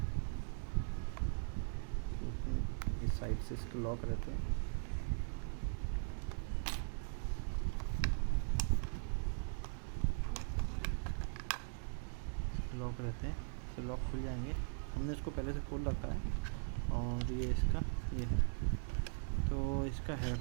क्योंकि इस साइड से इसके लॉक रहते हैं, इससे लॉक खुल जाएंगे। हमने इसको पहले से खोल रखा है और ये है। तो इसका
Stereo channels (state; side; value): silent; left; digital silence